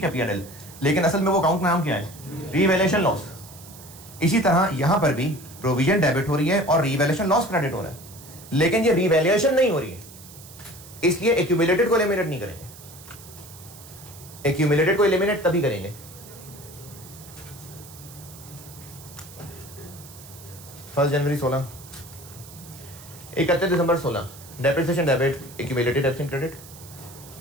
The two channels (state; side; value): noise; right; hiss, 18 dB below the sound